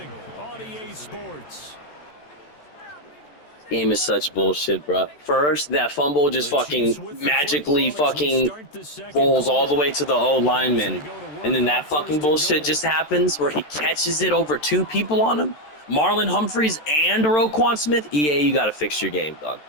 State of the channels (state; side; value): late; right; 13 ms